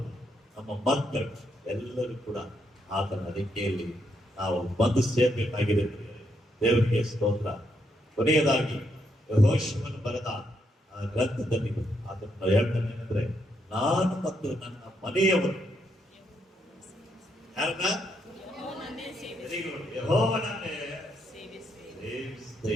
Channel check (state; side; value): normal; both; correlation 0.78